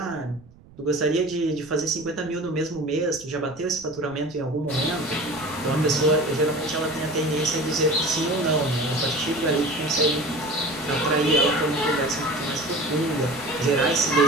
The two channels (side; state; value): right; noise; rumble, 24 dB below the sound